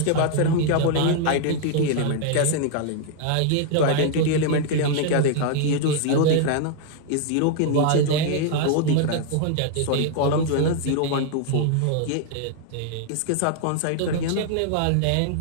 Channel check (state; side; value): different; both; correlation 0.00